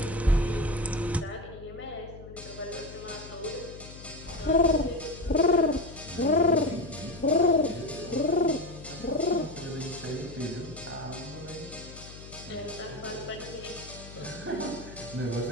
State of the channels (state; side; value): noise; left; hum, 15 dB below the sound